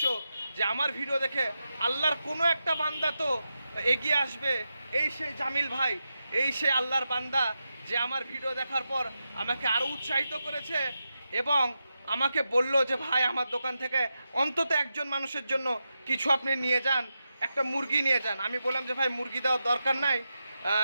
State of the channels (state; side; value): inverted; both; correlation -0.89